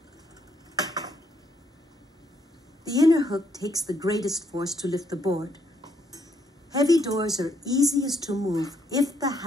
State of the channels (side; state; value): both; normal; correlation 0.72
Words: The inner hook takes the greatest force to lift the board. Heavy doors are easiest to move if the